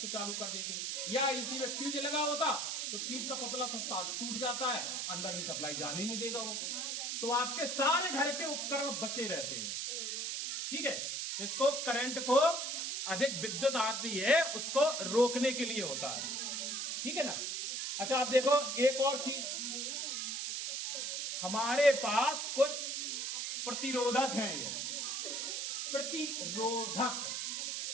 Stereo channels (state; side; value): noise; right; hiss, 2 dB below the sound